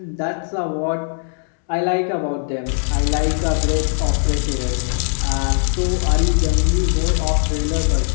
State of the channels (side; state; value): right; silent; digital silence